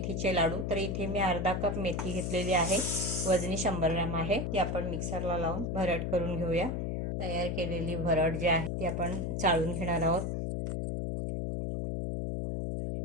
लाडू। तर इथे मी अर्धा कप मेथी घेतलेली आहे, वजनी 100 ग्रॅम आहे। ती आपण मिक्सरला लावून भरड करून घेऊया। तयार केलेली भरड जी आहे ती आपण चाळून घेणार आहोत।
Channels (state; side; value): noise; left; hum, 1 dB below the sound